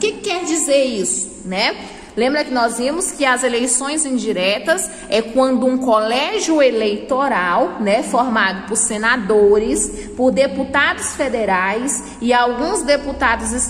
quer dizer isso, né? Lembra que nós vimos que as eleições indiretas é quando um colégio eleitoral, né, formado por senadores, por deputados federais e alguns deputados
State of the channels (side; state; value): both; identical; correlation 1.00